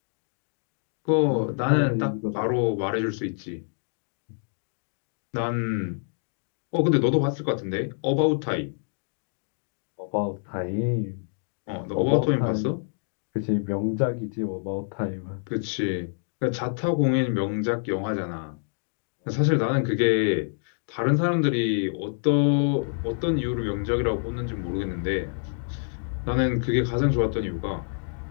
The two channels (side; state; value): right; silent; digital silence